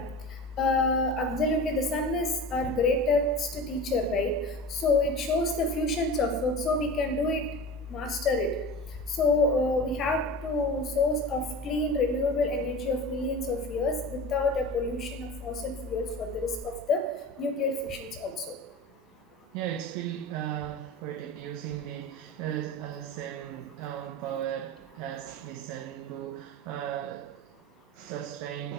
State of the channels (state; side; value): normal; both; correlation 0.33